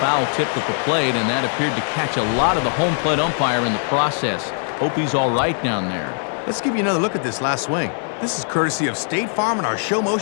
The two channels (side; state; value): right; silent; 57 dB below the other